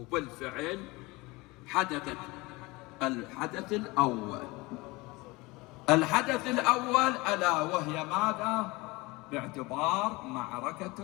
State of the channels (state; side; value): quieter; right; 23.3 dB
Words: حدثت الحدث الأول. الحدث الأول ألا وهي ماذا؟ باعتبار معركة